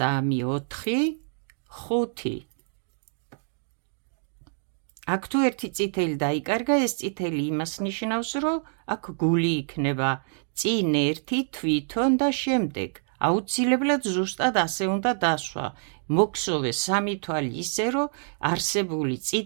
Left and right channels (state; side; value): silent; left; digital silence